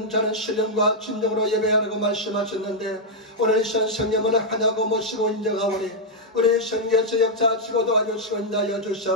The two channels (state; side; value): normal; both; correlation -0.04